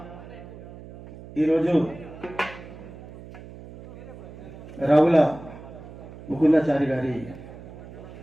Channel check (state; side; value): noise; right; hum, 15 dB below the sound